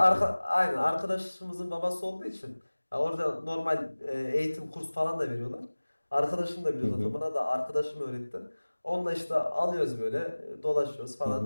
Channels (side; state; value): both; inverted; correlation -1.00